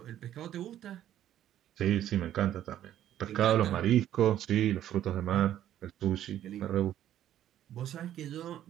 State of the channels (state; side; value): quieter; left; 11.7 dB